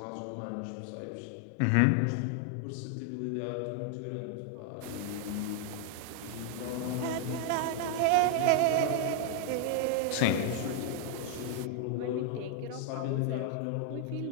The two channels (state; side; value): different; both; correlation 0.00